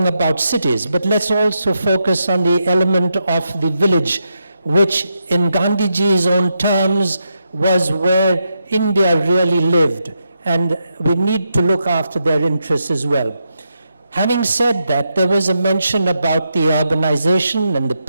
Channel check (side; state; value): both; inverted; correlation -0.84